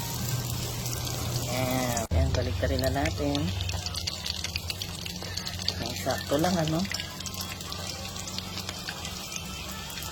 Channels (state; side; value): identical; both; correlation 1.00